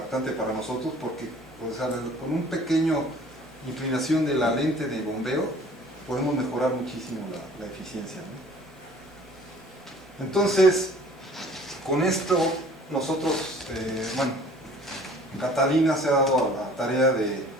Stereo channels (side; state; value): both; normal; correlation 0.50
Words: para nosotros, porque o sea, con un pequeño inclinación de la lente de bombeo podemos mejorar muchísimo la eficiencia, ¿no? Entonces con esto nosotros, Catalina se ha dado a la tarea de